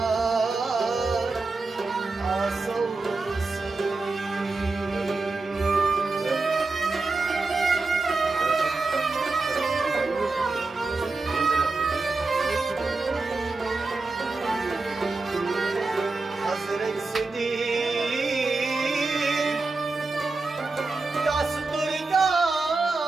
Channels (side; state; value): left; quieter; 3.7 dB